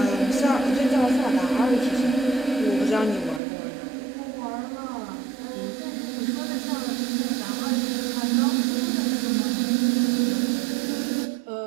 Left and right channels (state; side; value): drops out; left; at 3.4 s